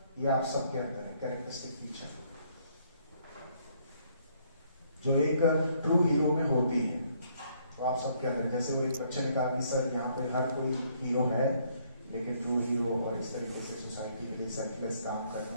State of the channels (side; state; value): both; inverted; correlation -0.67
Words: ये आप सबके अंदर है, कैरेक्टरिस्टिक फीचर जो एक ट्रू हीरो में होती है, तो आप सबके अंदर। जैसे वो एक बच्चे ने कहा कि सर यहाँ पे हर कोई हीरो है, लेकिन ट्रू हीरो और इस तरीके से सोसाइटी के लिए सेल्फलेस काम